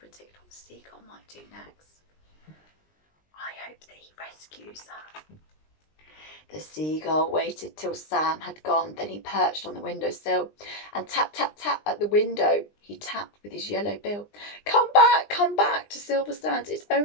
what the seagull might do next? I hope that he rescues her. The seagull waited till Sam had gone. Then he perched on the windowsill and tap, tap, tap at the window. He tapped with his yellow bill. Come back to Silver Sands. It's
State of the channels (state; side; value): late; right; 20 ms